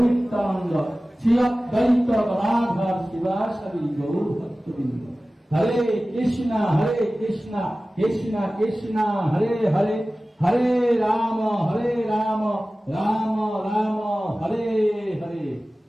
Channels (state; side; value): normal; both; correlation 0.97